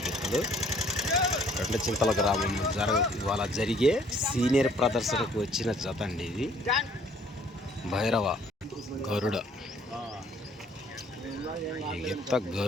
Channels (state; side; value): normal; both; correlation 0.59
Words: గిత్తలు రెండు చింతల గ్రామం ఇవాళ జరిగే సీనియర్ ప్రదర్శనకు వచ్చిన జత అండి. ఇది భైరవ గరుడ. ఈ గిత్త